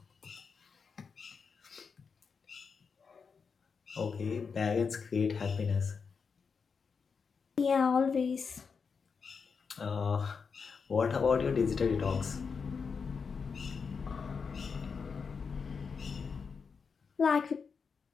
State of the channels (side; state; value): right; quieter; 5.6 dB